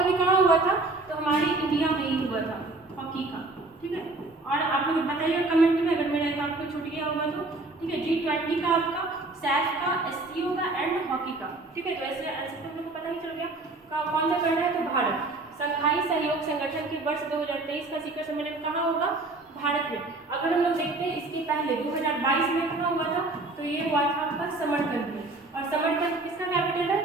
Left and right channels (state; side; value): quieter; left; 3.1 dB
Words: भी कहाँ हुआ था, तो हमारी इंडिया में ही हुआ था हॉकी का, ठीक है। और आप लोग बताइएगा कमेंट में अगर मेरा आपको छूट गया होगा तो, ठीक है। G20 का आपका, सैफ का, SCO का एंड हॉकी का, ठीक है। तो ऐसे ऐसे तो हम लोग को पता ही चल गया कौन सा कर रहा है, तो भारत। संघाई सहयोग संगठन के वर्ष 2023 का शिखर सम्मेलन कहाँ होगा, भारत में। अगर हम लोग देखते हैं इसके पहले 2022 में कहाँ हुआ था, तो ये हुआ था आपका समरकंद में। और समरकंद किसका कैपिटल है,